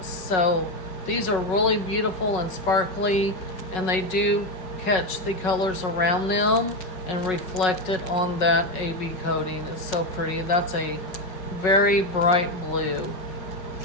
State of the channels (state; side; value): late; right; 5.4 ms